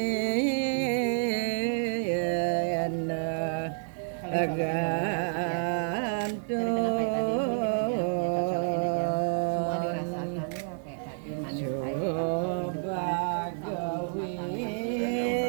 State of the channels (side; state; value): left; silent; 56 dB below the other